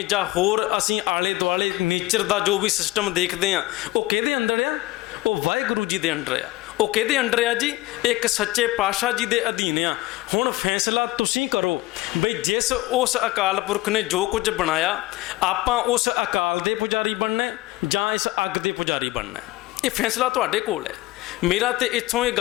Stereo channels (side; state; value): right; quieter; 19.2 dB